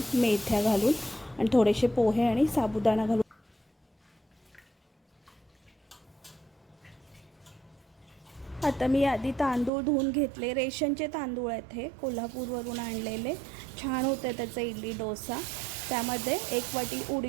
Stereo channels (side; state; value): left; drops out; at 9.7 s